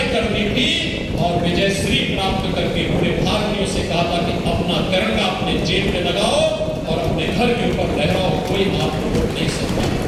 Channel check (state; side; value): identical; both; correlation 1.00